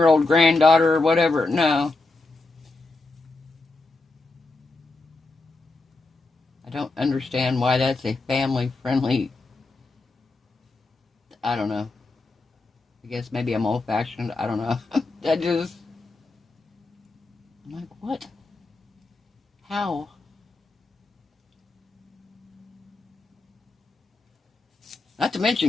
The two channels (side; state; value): right; quieter; 3.3 dB